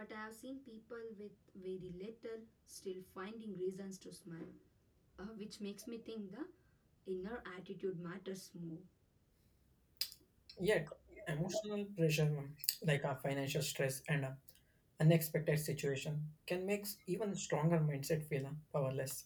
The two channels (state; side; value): identical; both; correlation 1.00